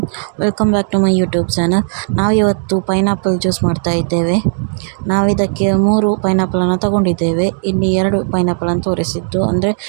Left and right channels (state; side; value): silent; left; digital silence